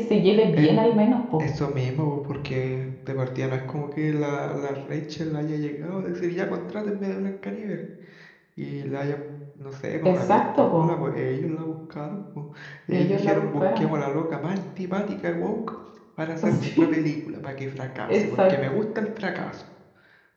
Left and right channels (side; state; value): both; identical; correlation 1.00